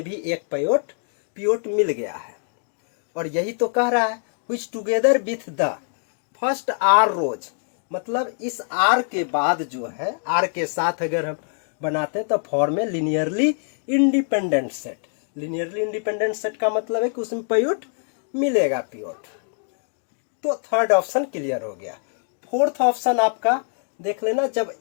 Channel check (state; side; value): silent; right; 62 dB below the other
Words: भी एक पिवट मिल गया है। और यही तो कह रहा है which together with the first r rows, मतलब इस आर के बाद जो है, आर के साथ अगर हम बनाते हैं तो फॉर्म में linearly independent set. Linearly independent set का मतलब है कि उसमें पिवट मिलेगा पिवट। तो थर्ड ऑप्शन क्लियर हो गया। फोर्थ ऑप्शन आपका देख लेना, जब